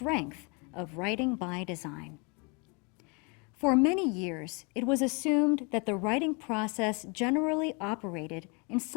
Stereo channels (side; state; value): right; quieter; 32.2 dB